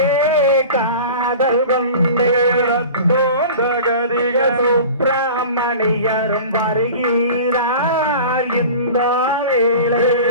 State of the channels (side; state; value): both; inverted; correlation -0.37